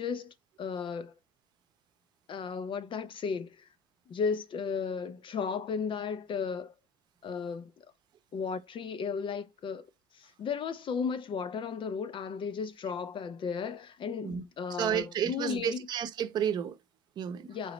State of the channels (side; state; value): both; normal; correlation 0.39